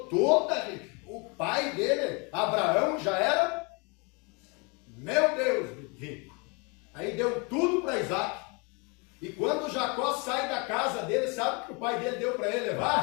toda a riqueza. O pai dele, Abraão, já era, meu Deus, rico. Aí deu tudo para Isaac. E quando Jacó sai da casa dele, sabe o que o pai dele deu para ele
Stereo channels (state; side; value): quieter; right; 31.1 dB